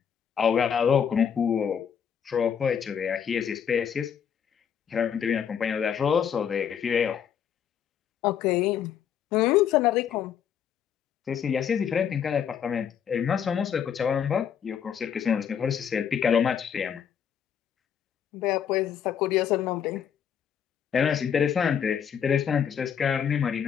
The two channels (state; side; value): quieter; right; 8.2 dB